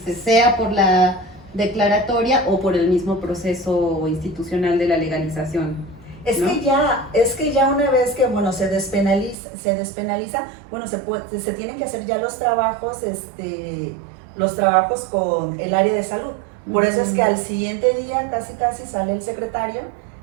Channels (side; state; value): left; drops out; at 9.3 s